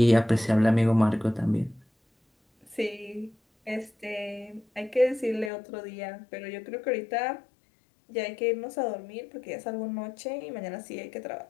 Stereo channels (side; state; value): right; drops out; at 5.5 s